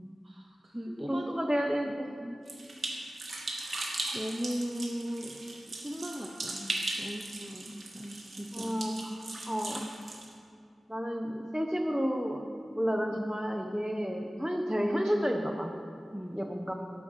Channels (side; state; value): both; normal; correlation 0.97